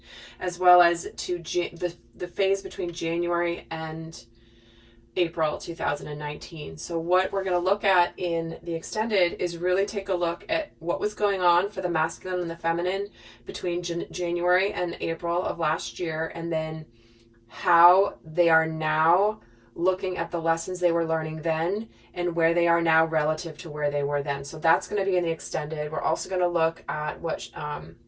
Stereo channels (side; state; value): both; identical; correlation 1.00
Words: as well as to the phase between January and April 2019. So what we're going to look at in the extended is really take a look at what was going on for the masculine and the feminine between January and April of last year, and then how they are now looking at the lessons they were learning then and where they are now relative to where they were then. So that's going to be in the extended. We're also going to look at what